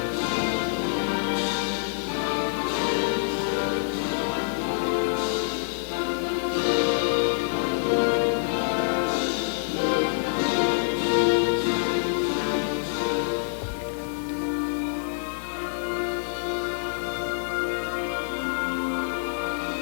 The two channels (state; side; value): silent; right; digital silence